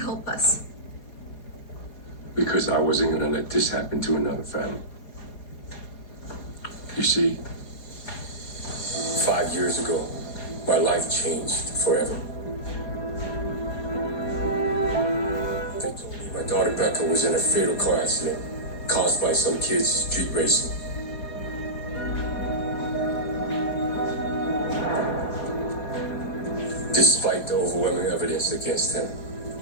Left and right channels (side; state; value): right; late; 4.8 ms